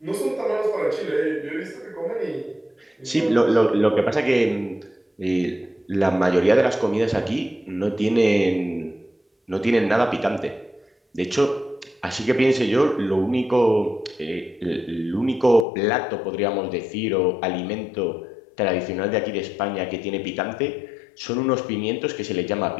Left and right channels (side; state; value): right; drops out; at 15.7 s